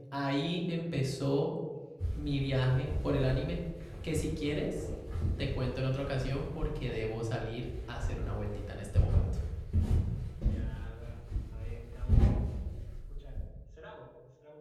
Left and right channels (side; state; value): both; identical; correlation 1.00